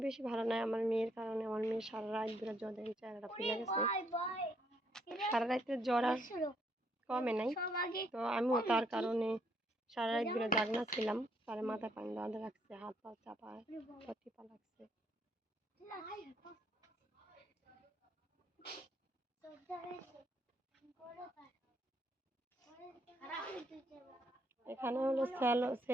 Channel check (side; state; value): both; normal; correlation 0.71